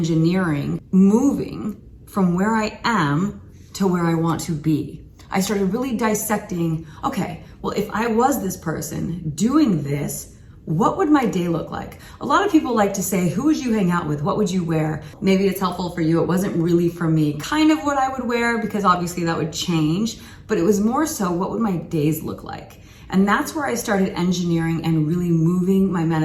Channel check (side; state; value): both; identical; correlation 1.00